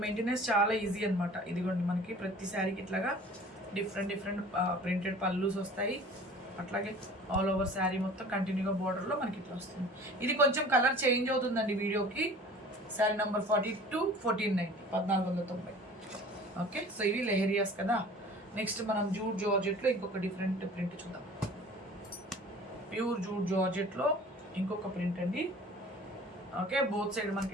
మెయింటెనెన్స్ చాలా ఈజీ అనమాట. ఇదిగోండి మనకి ప్రతి శారీకి ఇట్లాగా డిఫరెంట్ ప్రింటెడ్ పల్లూస్ వస్తాయి. అట్లాగే ఆల్ ఓవర్ శారీ మొత్తం కంటిన్యూగా బోర్డర్లో మనకి ఇట్లా వస్తుంది. ఇది కొంచెం కలర్ చేంజ్ అవుతుందండి వీడియోకి. శారీ నెంబర్ 42, 1490, 1490. ఓకే, సో ఇవి లెహరియాస్ కదా. నెక్స్ట్ మనం జూట్ జార్జెట్లో ఇంకొక డిఫరెంట్ ప్రింట్ చూద్దాం. ప్యూర్ జూట్ జార్జెట్లో ఇంకొక ప్రింట్ అండి. ఓకే, బోత్ సైడ్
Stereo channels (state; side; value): normal; both; correlation 0.45